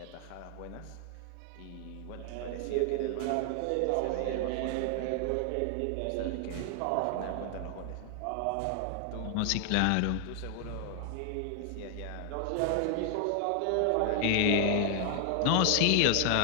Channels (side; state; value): both; different; correlation 0.00